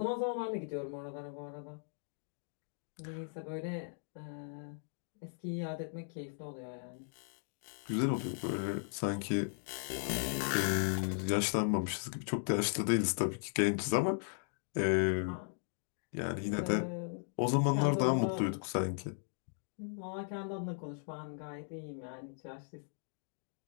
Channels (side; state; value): right; silent; digital silence